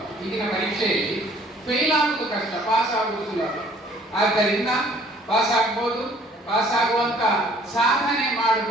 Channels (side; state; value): both; normal; correlation 0.57